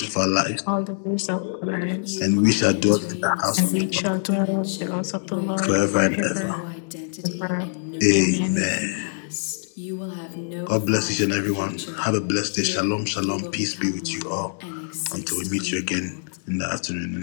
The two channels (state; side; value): silent; right; digital silence